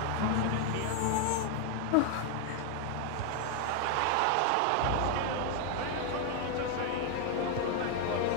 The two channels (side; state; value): both; different; correlation 0.00